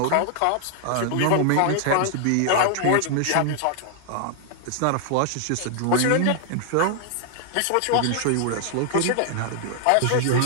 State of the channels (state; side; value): different; both; correlation 0.00